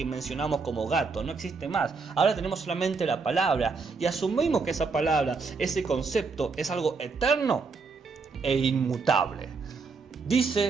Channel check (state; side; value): quieter; left; 4.6 dB